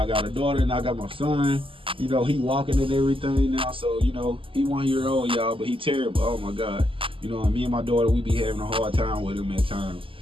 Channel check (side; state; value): left; late; 0.25 ms